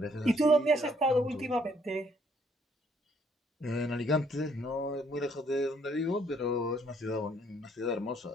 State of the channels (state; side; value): normal; both; correlation 0.66